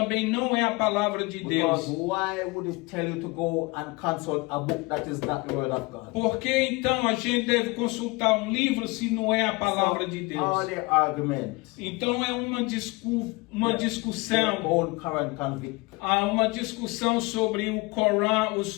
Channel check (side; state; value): right; quieter; 24.7 dB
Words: não é a palavra de Because Deus. why would it tell you to go and consult a book that is not the word of God? Por que então a gente deve consultar um livro se não é a palavra de All Deus? the arguments, Então é uma their discussão, own Quran convict. há uma discussão sobre o Corão,